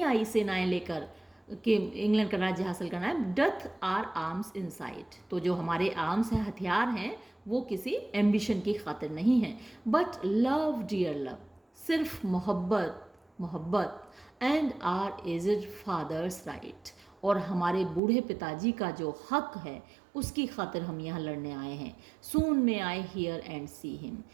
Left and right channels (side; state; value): left; drops out; at 18.0 s